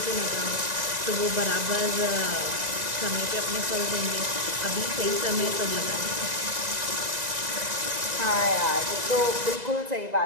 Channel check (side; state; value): left; late; 2.0 ms